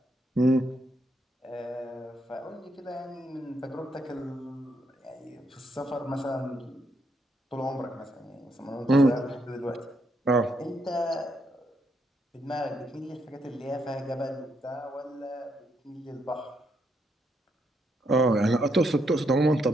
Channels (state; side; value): normal; both; correlation 0.78